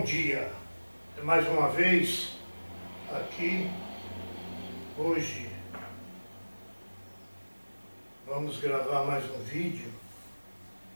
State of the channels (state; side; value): inverted; both; correlation -1.00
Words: dia. Mais uma vez aqui, hoje vamos gravar mais um vídeo